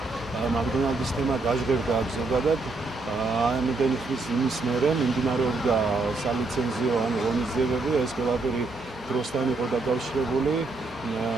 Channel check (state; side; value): quieter; left; 3.5 dB